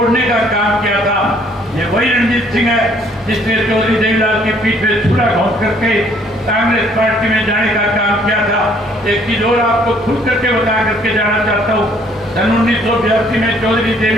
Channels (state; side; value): normal; both; correlation 0.62